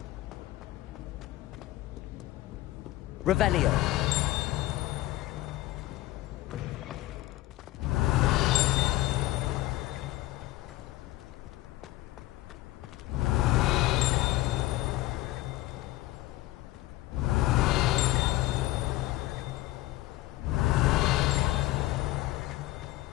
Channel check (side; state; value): right; quieter; 17.1 dB